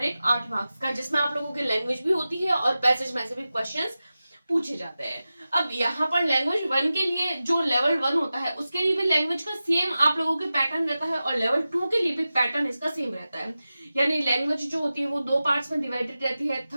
एक 8 मार्क्स का, जिसमें आप लोगों की लैंग्वेज भी होती है और पैसेज में से भी क्वेश्चंस पूछे जाते हैं। अब यहाँ पर लैंग्वेज 1 के लिए जो लेवल 1 होता है उसके लिए भी लैंग्वेज का सेम आप लोगों के पैटर्न रहता है और लेवल 2 के लिए भी पैटर्न इसका सेम रहता है। यानी लैंग्वेज जो होती है वो 2 पार्ट्स में डिवाइडेड रहती है,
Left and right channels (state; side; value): inverted; both; correlation -0.94